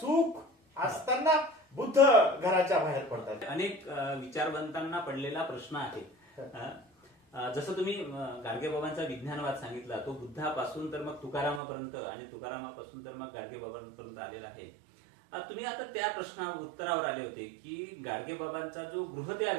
असताना बुद्ध घराच्या बाहेर पडतात. अनेक विचारवंतांना पडलेला प्रश्न आहे. जसं तुम्ही गाडगेबाबांचा विज्ञानवाद सांगितला, तो बुद्धापासून तर मग तुकारामापर्यंत आणि तुकारामापासून तर मग गाडगेबाबांपर्यंत आलेला आहे. तुम्ही आता त्या प्रश्नावर उत्तरावर आले होते की गाडगेबाबांचा जो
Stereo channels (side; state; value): left; drops out; at 11.6 s